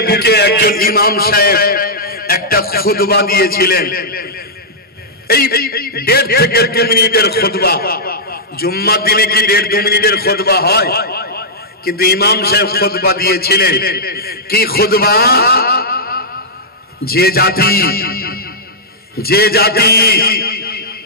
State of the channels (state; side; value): normal; both; correlation -0.10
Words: বুকে একজন ইমাম সাহেব একটা খুতবা দিয়েছিলেন, এই 1.5 থেকে 2 মিনিটের খুতবা। জুম্মার দিনে কি 1.5-2 মিনিটের খুতবা হয়? কিন্তু ইমাম সাহেব খুতবা দিয়েছিলেন কি খুতবা? যে জাতি